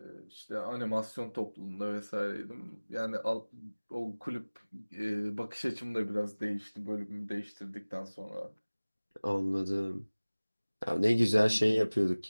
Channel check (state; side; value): inverted; both; correlation -1.00